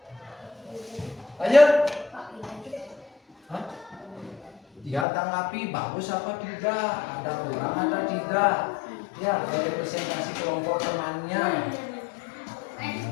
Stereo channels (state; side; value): drops out; right; at 5.1 s